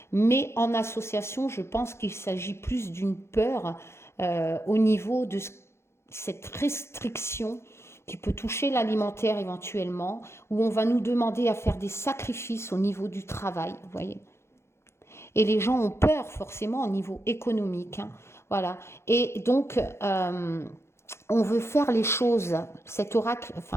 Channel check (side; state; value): right; late; 0.13 ms